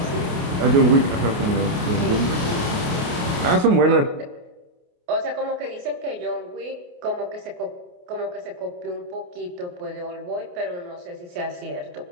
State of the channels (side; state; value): left; late; 28 ms